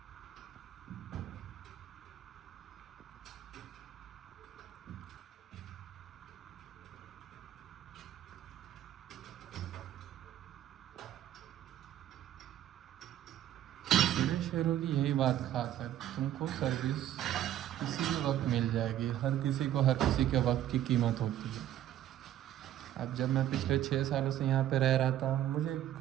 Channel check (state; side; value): quieter; left; 12.1 dB